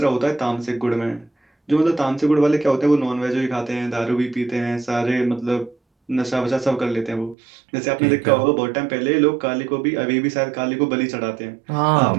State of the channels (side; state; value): left; drops out; at 7.4 s